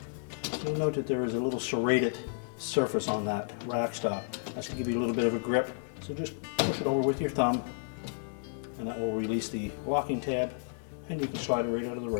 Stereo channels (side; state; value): right; silent; digital silence